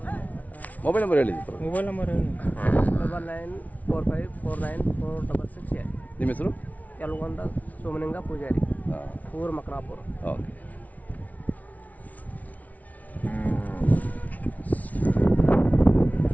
ಮೊಬೈಲ್ ನಂಬರ್ ಹೇಳಿ. Mobile number 9945494668. ನಿಮ್ಮ ಹೆಸರು? ಯಲಗೊಂಡ ಸೋಮಲಿಂಗ ಪೂಜಾರಿ, ಊರು ಮಕನಾಪುರ. ಓಕೆ.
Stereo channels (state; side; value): late; right; 0.072 ms